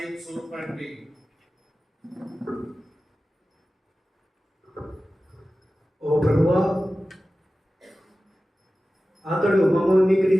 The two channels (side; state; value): both; normal; correlation 0.95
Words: చూపండి. ఓ ప్రభువా, అతడు మమ్మల్ని మీకు